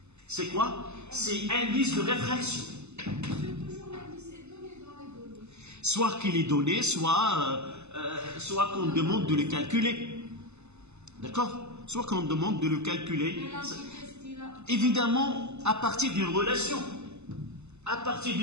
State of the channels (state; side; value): late; left; 0.82 ms